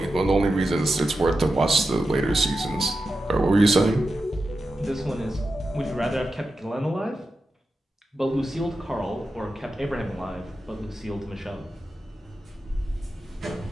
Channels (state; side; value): normal; both; correlation 0.91